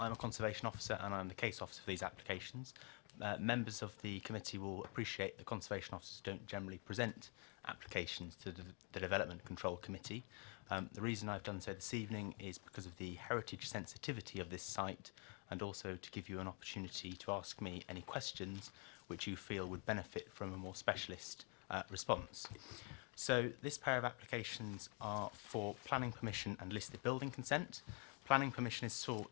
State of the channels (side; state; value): right; quieter; 36.7 dB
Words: conservation officer and I'm the case officer for these applications. Members of the committee will appreciate that conservation officers don't generally present applications to the Development Control Committee. The reason I've done so this evening is because of the heritage sensitivity of this site, and also to give you an opportunity to ask me any questions which you feel would benefit from a more specialist response. So this pair of applications are for planning permission and listed building consent. Planning permission is